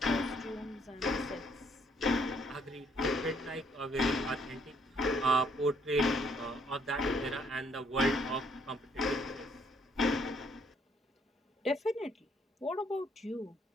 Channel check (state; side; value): normal; both; correlation 0.67